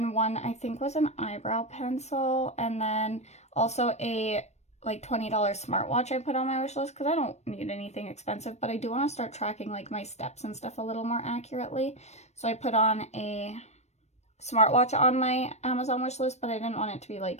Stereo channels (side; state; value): right; late; 0.32 ms